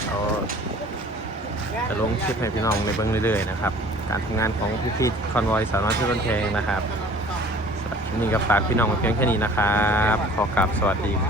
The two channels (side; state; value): both; normal; correlation 0.49